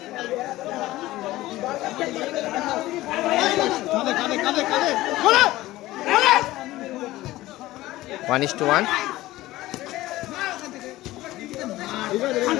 One is to one.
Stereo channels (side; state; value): right; quieter; 17.0 dB